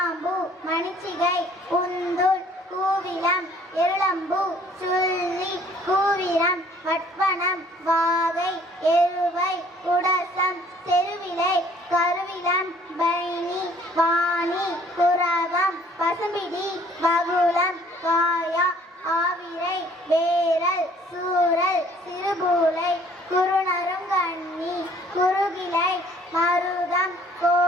மணிச்சிகை, உந்துள், கூவிலம், இருளம்பூ, சுள்ளி, கூவிரம், வட்வனம், வாகை, எருவை, குடசம், செருவிலை, கருவிலம், பைனி, வாணி, குரவம், பசும்பிடி, வகுளம், காயா, ஆவிரை, வேரல், சூரல், சிறுபூலை, குறுநருங்கண்ணி, குறுகிலை, மருதம்,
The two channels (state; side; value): normal; both; correlation 0.58